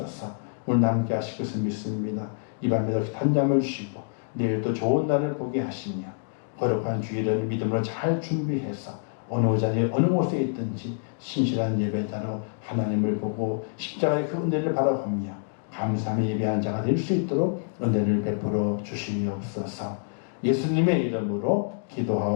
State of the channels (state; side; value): silent; right; digital silence